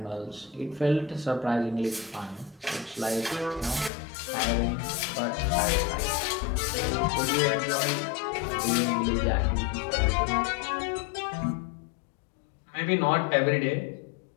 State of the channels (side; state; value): right; drops out; at 3.9 s